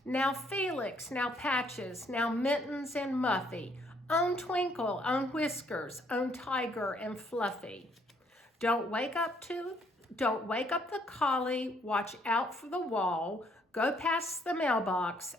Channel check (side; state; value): both; normal; correlation 0.67